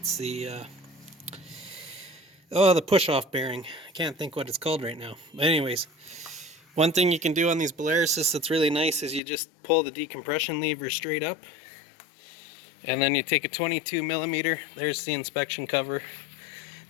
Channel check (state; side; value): drops out; right; at 9.2 s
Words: the the push-off bearing. I can't think what it's called right now. But anyways, one thing you can do on these Belaruses that's really nice is you just pull the decompression lever straight up, and then you take a 22 millimeter. There's the inspection cover.